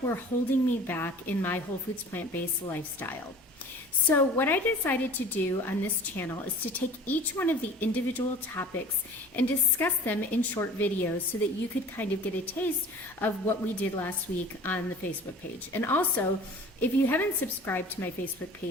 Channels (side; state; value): both; normal; correlation 0.43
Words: were holding me back in my whole foods plant-based lifestyle. So what I decided to do on this channel is to take each one of the individual topics and discuss them in short videos so that you could kind of get a taste of what we did last week on the Facebook page. And also, if you haven't subscribed to my Facebook